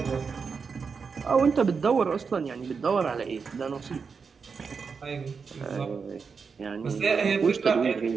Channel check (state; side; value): quieter; left; 5.5 dB